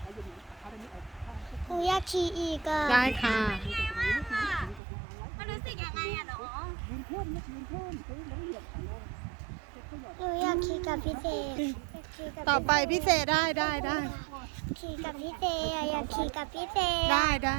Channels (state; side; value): drops out; left; at 4.8 s